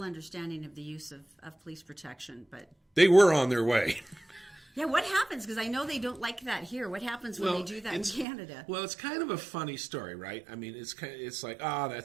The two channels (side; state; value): left; drops out; at 8.2 s